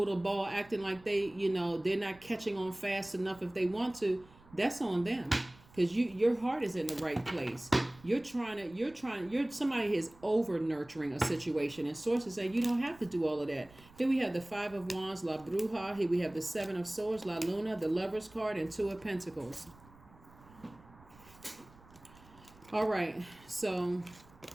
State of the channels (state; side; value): noise; right; rumble, 24 dB below the sound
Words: the ball acting like they're not catching on fast enough if they want to. That's on them, because your heart is in the right place. You're somebody is over nurturing a situation, and sources say you don't have to do all of that. Here we have the Five of Wands, La Bruja. Here we have the Seven of Swords, La Luna, the Lover's card, and Two of Pentacles. All right, so